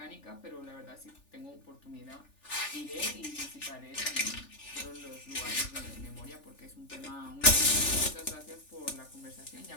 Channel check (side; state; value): right; late; 3.4 ms